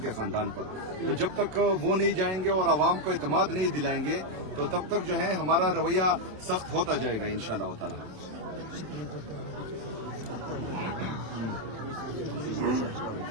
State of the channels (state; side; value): late; left; 27 ms